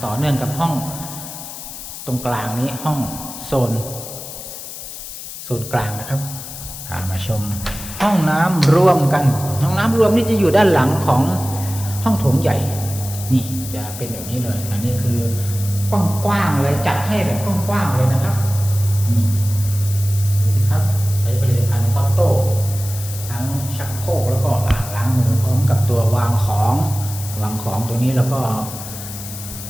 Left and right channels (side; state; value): left; noise; hiss, 11 dB below the sound